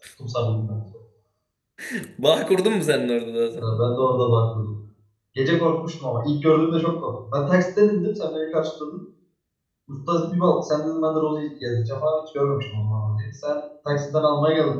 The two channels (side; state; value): both; identical; correlation 1.00